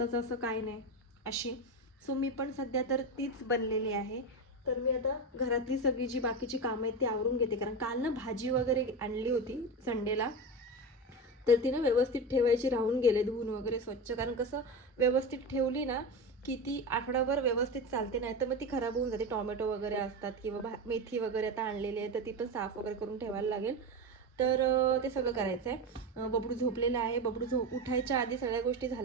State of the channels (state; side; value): normal; both; correlation 0.20